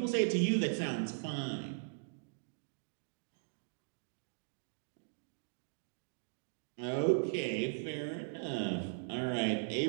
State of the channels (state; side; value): silent; left; digital silence